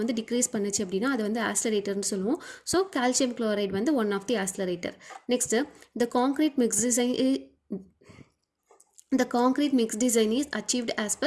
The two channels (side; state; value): both; identical; correlation 1.00